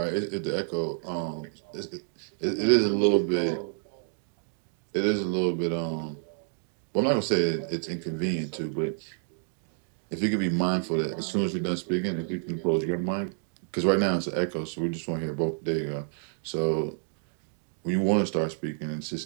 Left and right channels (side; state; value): left; silent; digital silence